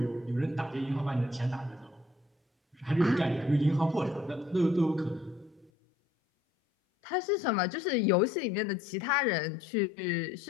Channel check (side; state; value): right; drops out; at 5.7 s